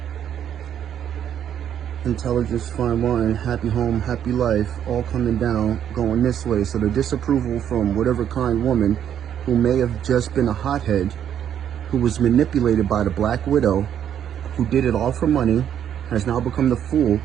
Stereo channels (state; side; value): quieter; left; 9.6 dB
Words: Intelligence, fine wine, happy home, happy life, all coming down, going this way. So the disapproval from whatever kind woman who may have just been a hothead, who was manipulated by the Black Widow, who did it all for money, has now become the fool,